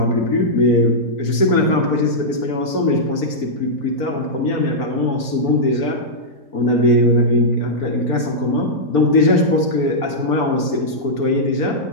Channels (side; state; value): right; late; 4.4 ms